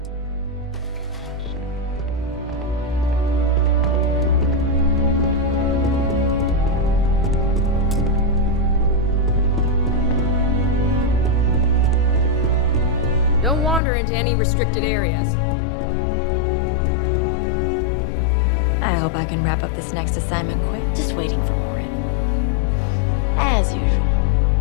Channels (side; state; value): right; drops out; at 13.8 s